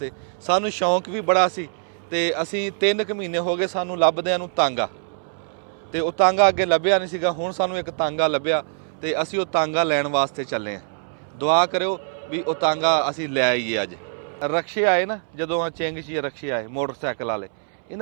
सानूं शौक भी बड़ा सी ते असीं 3 महीने हो गए सानूं लभदिआं नूं तांगा ते वो तांगा अगे लभ्या नहीं सीगा। हुण सानूं एक तांगा लभ्या ते असीं वो तांगा लैण वास्ते चले हैं। दुआ करियो भी वो तांगा असीं लै आईए। अज रक्शे आए ना जदों चिंग च रक्शे आए मोटरसाइकिल वाले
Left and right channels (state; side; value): silent; left; 63 dB below the other